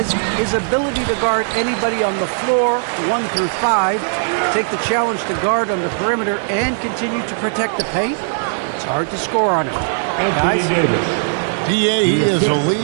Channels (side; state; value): left; silent; 67 dB below the other